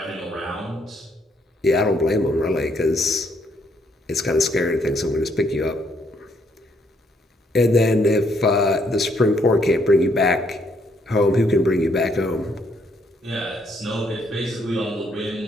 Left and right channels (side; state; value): both; normal; correlation 0.71